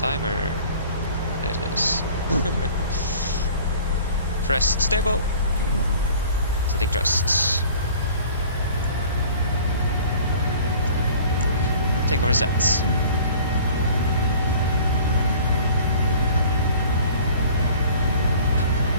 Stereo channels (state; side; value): inverted; both; correlation -0.48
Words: There it is. Press stable. Setting thrust. Take over sets.